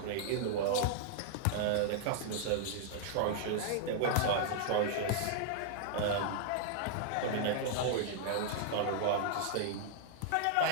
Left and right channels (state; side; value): different; both; correlation -0.01